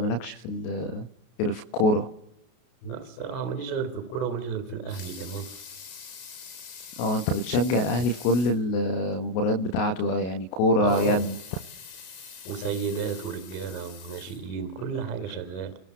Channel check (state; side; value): late; right; 33 ms